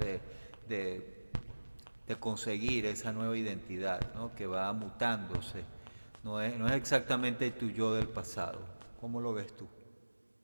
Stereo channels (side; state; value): both; inverted; correlation -1.00